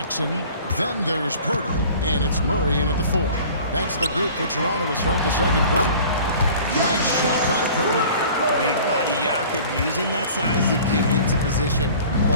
Then there's Poeltl. And it's Murray in at the 4. That's the group for Toronto to start the second quarter. Nice shot by Poeltl. Big body Jakob using that size to get into position.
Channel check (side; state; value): both; inverted; correlation -0.46